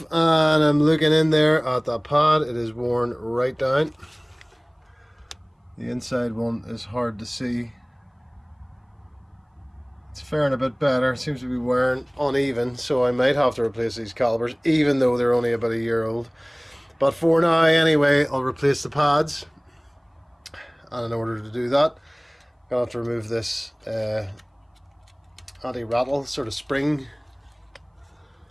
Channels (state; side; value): identical; both; correlation 1.00